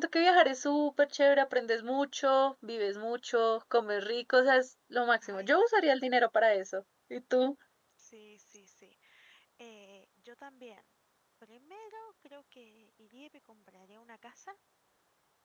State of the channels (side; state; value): both; identical; correlation 1.00